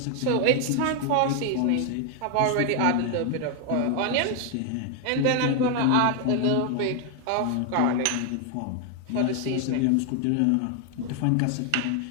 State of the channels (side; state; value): both; different; correlation 0.00